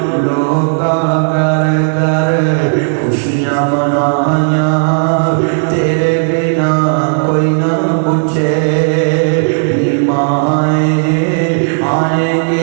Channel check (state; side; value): silent; left; digital silence